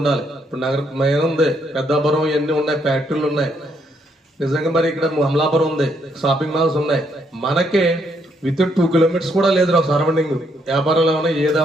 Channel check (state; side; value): normal; both; correlation 0.73